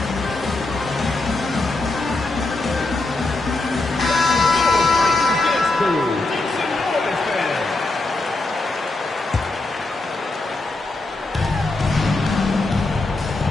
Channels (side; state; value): right; quieter; 3.1 dB